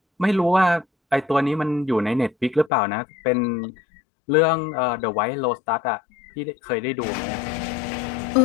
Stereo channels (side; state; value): right; drops out; at 2.7 s